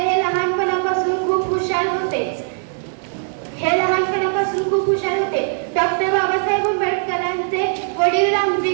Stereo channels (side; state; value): left; silent; 61 dB below the other